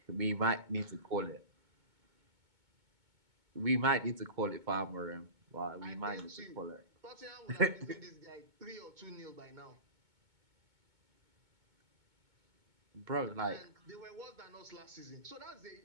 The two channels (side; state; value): left; late; 2.2 ms